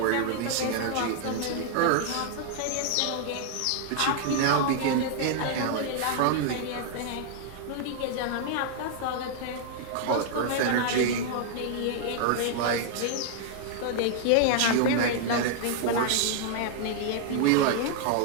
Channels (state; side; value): different; both; correlation 0.00